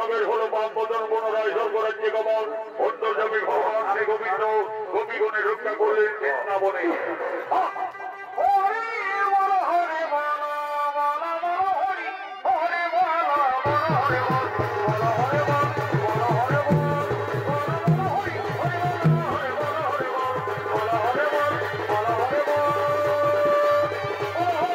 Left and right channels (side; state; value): both; identical; correlation 1.00